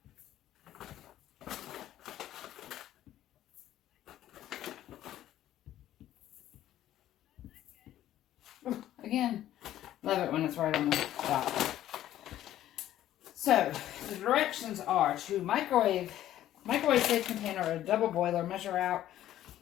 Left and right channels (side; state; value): right; quieter; 12.8 dB